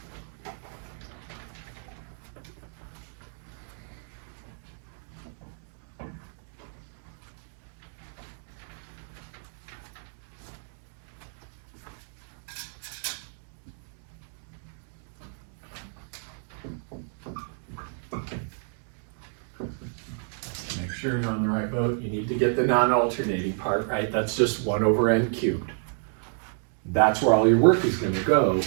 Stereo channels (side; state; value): left; silent; 58 dB below the other